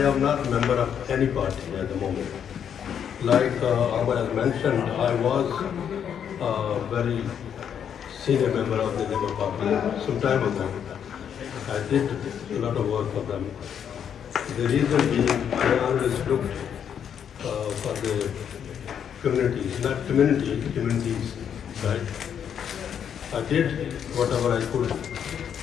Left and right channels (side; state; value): right; quieter; 8.4 dB